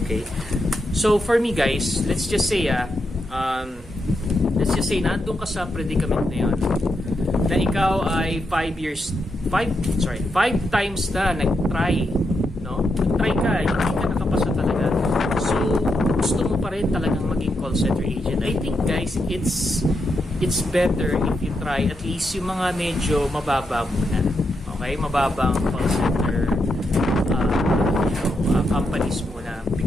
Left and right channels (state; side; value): normal; both; correlation 0.83